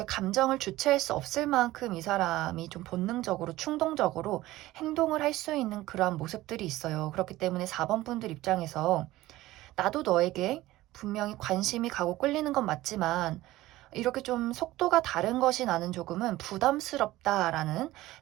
감정을 주체할 수 없을 만큼 이 사람이 좀 본능적으로 충동적으로 행동을 할 수 있는 그러한 모습들이 있어요. 그렇기 때문에 4번 분들 입장에서 나도 너에게 분명히 관심이 가고 끌리는 건 맞지만 이렇게 좀 속도가 다른 것이 나는 조금은 부담스럽다라는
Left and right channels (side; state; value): left; quieter; 16.9 dB